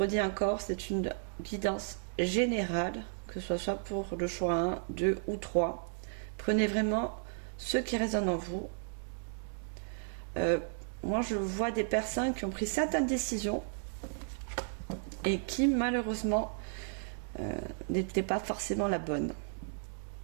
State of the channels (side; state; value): left; silent; digital silence